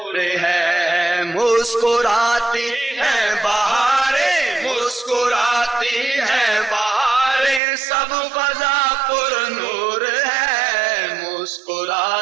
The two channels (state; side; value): drops out; left; at 7.6 s